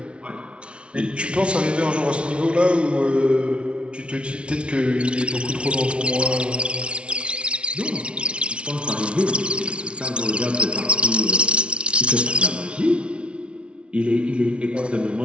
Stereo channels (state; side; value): late; left; 0.059 ms